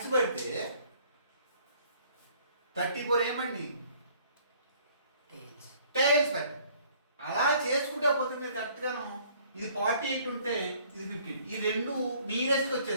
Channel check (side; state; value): both; inverted; correlation -0.59